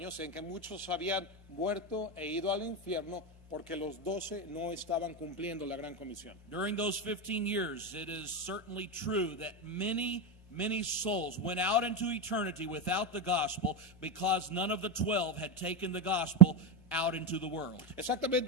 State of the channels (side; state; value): both; normal; correlation 0.11